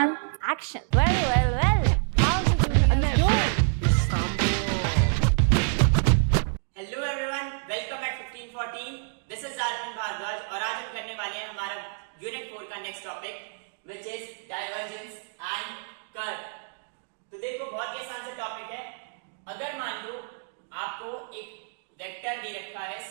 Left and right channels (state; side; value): silent; left; digital silence